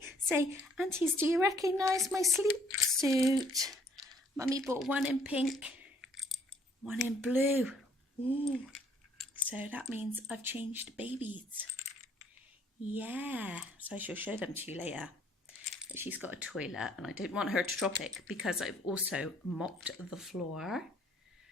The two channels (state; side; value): normal; both; correlation 0.62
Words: say, aunties, do you recognise my sleep suit? Mummy bought one in pink, one in blue. Ooh. So that means I've changed babies. Yeah, so I shall show them to you later. But she's got a toilet and I don't want her to drop it because I've also mopped the floor